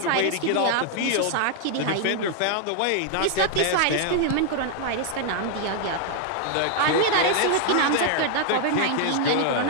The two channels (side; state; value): both; different; correlation 0.00